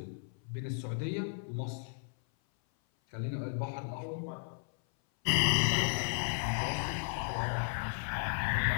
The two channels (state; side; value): silent; right; 55 dB below the other